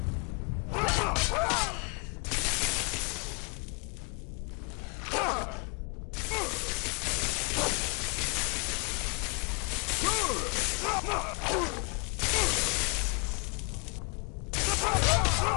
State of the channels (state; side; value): quieter; right; 34.1 dB